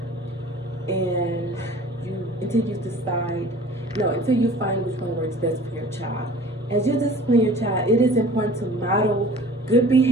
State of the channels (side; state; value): both; normal; correlation 0.46